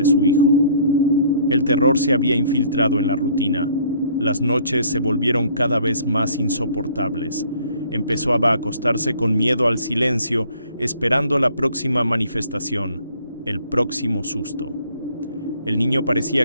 su hijo. El terror se había infiltrado en la rutina. Las noches se volvieron cada vez más insoportables. Empezó a acostarse con miedo al silencio, esperando la próxima manifestación, el próximo susto. El niño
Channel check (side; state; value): both; inverted; correlation -0.58